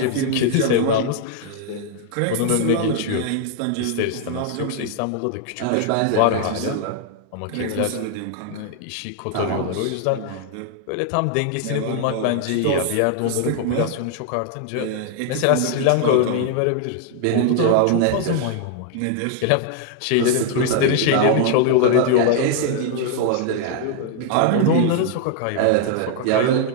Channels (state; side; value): different; both; correlation 0.00